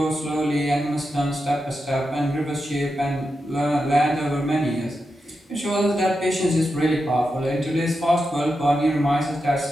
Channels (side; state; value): both; normal; correlation 0.88